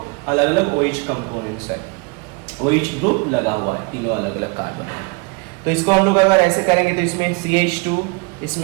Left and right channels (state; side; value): quieter; left; 29.9 dB